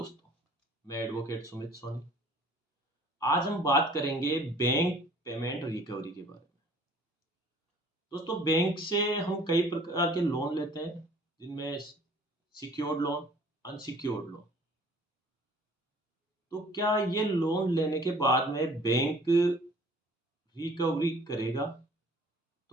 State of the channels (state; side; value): normal; both; correlation 0.53